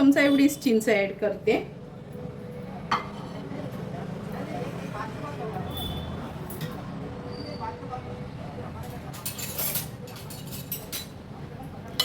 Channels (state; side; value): identical; both; correlation 1.00